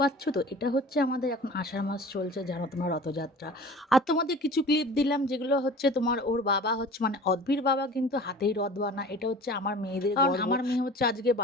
তো, এটা হচ্ছে আমাদের এখন আষাঢ় মাস চলছে, জানো তোমার রথযাত্রা। আর তোমাদের কিছু ক্লিপ দিলাম যেগুলো তোমার ওর বাবা মানে অদ্ভির বাবা কিন্তু হাতেই রথ বানা। এটা আমার মেয়েদের, কারণ আমার মেয়ে আজকে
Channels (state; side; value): normal; both; correlation 0.41